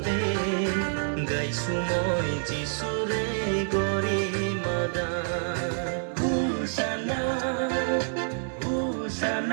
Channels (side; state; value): left; silent; digital silence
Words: গাইছো মই যিচুৰে গৰিমা গান হোচানা